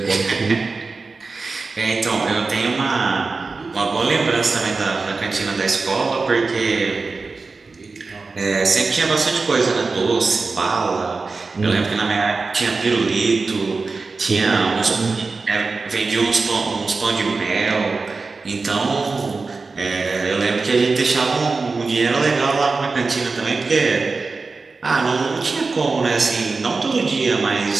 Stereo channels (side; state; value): left; quieter; 4.1 dB